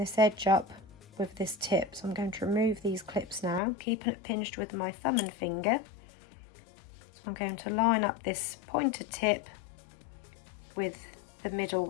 edge up with this tip. So I'm going to remove these clips now, keeping it pinched with my thumb and finger. So I'm going to line up this pointed tip with the middle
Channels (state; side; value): drops out; right; at 3.6 s